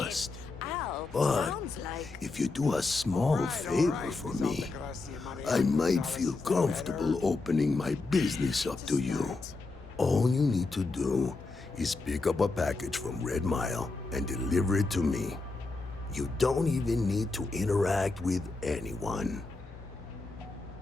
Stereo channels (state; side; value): quieter; right; 3.6 dB